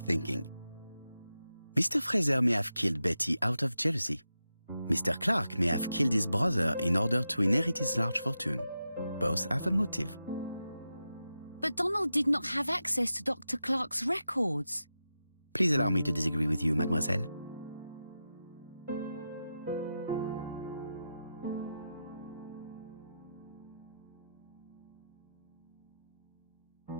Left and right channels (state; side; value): inverted; both; correlation -0.90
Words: Mr. Fraser may have killed Betty out of jealousy. Mr. Clark may have killed his brother in order to inherit his large fortune. Both have a motive. But Donald did not have access to Dr. Clark's records. Please allow me to disagree with you, mademoiselle.